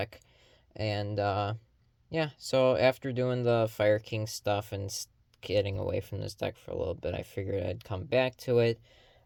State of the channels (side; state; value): both; identical; correlation 1.00